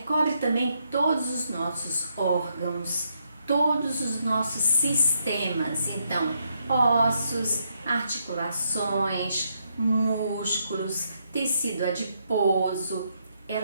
também todos os nossos órgãos, todos os nossos sistemas. Então, ossos, articulações, músculos, tecido adiposo,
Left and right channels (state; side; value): inverted; both; correlation -0.77